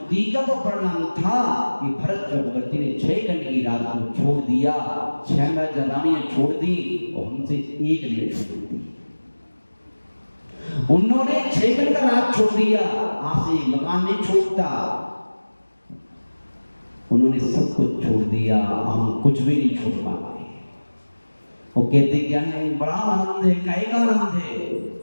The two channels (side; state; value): both; inverted; correlation -1.00